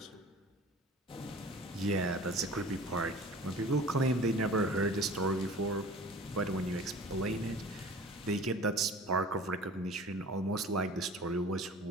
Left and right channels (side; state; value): both; normal; correlation 0.43